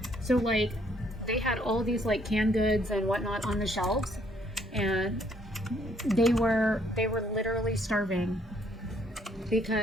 So like, they had all these like canned goods and whatnot on the shelves, and they were literally starving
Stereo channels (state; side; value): normal; both; correlation 0.66